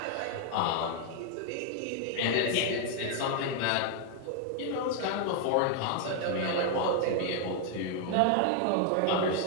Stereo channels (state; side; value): different; both; correlation 0.00